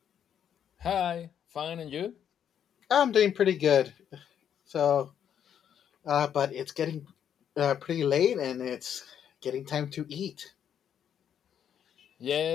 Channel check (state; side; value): quieter; right; 9.0 dB